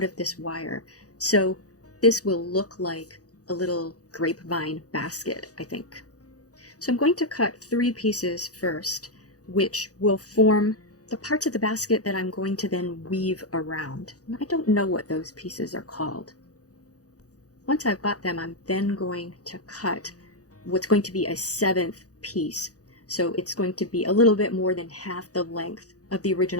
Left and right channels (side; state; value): right; late; 0.67 ms